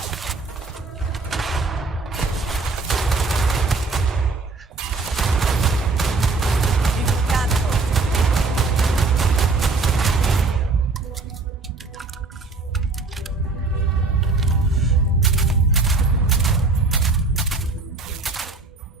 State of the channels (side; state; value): left; quieter; 3.8 dB